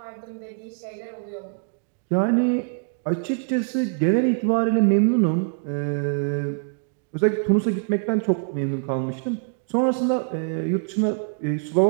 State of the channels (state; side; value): silent; left; 61 dB below the other